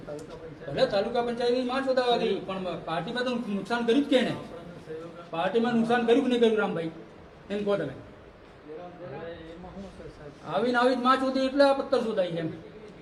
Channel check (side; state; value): both; identical; correlation 1.00